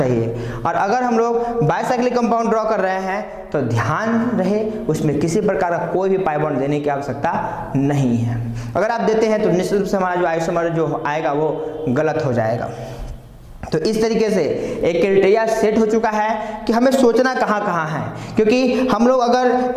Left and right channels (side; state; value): both; identical; correlation 1.00